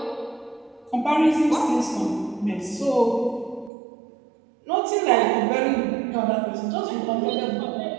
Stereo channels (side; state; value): left; drops out; at 3.7 s